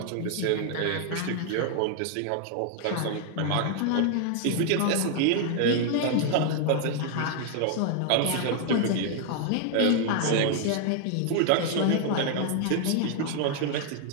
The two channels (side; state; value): both; different; correlation 0.00